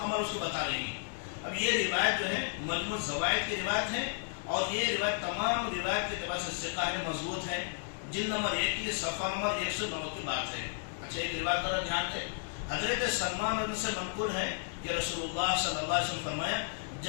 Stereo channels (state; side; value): silent; right; digital silence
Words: عمر اس کو بتا رہی ہیں۔ اب یہ روایت جو ہے مجموع زوائد کی روایت ہے، اور یہ روایت تمام روایت کے اعتبار سے ثقہ ہے، مضبوط ہے، جلد نمبر 1 کی صفحہ نمبر 109 کی بات ہے۔ اچھا، ایک روایت پر دھیان دیں، حضرت سلمان رضی اللہ عنہ سے منقول ہے کہ رسول اللہ صلی اللہ علیہ وسلم فرمایا